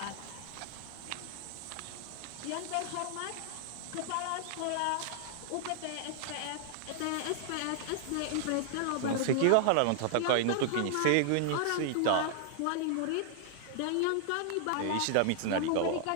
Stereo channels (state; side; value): different; both; correlation -0.01